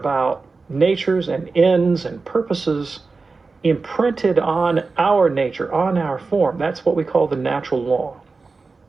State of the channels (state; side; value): quieter; left; 4.1 dB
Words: natures and ends and purposes imprinted on our nature, on our form, that's what we call the natural law.